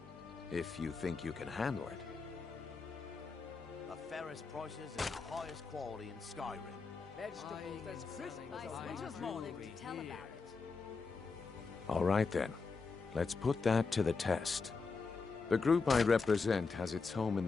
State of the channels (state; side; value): quieter; right; 4.6 dB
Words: If you think you can handle it. The fairest prices and the highest quality in Skyrim. Vegetables as crisp as a winter's morning. Tell about it. All right then. Let's put that to the test. The group I represent has its home in